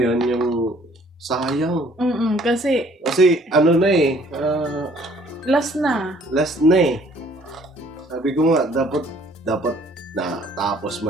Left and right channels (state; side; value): normal; both; correlation 0.59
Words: yung sayang. Kasi Kasi, ano na eh, last na. last na eh. Sabi ko nga, dapat na tapos